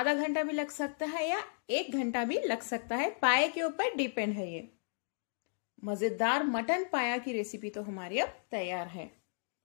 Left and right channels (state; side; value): silent; right; digital silence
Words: घंटा भी लग सकता है या 1 घंटा भी लग सकता है, पाए के ऊपर डिपेंड है। ये मजेदार मटन पाया की रेसिपी तो हमारी अब तैयार है।